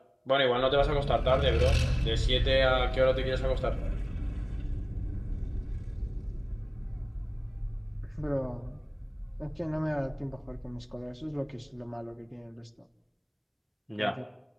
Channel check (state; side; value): identical; both; correlation 1.00